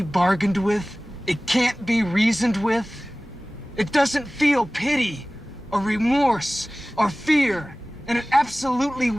bargained with. It can't be reasoned with. It doesn't feel pity or remorse or fear, and it absolutely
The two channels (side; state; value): both; normal; correlation 0.98